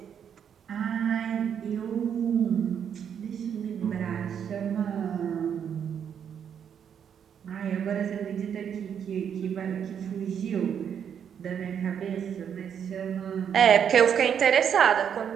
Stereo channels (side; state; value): left; quieter; 8.2 dB